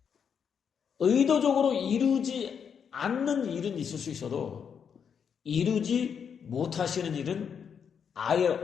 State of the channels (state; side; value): quieter; right; 7.2 dB